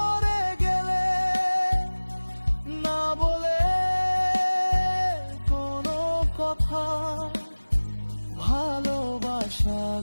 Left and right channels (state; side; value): inverted; both; correlation -1.00